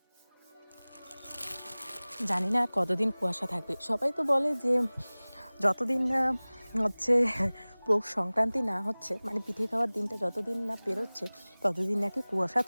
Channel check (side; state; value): both; inverted; correlation -1.00